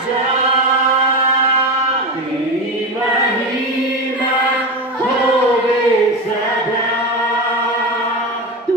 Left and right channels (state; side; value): normal; both; correlation 0.19